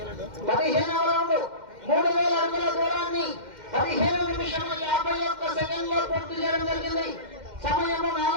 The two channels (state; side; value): late; left; 2.1 ms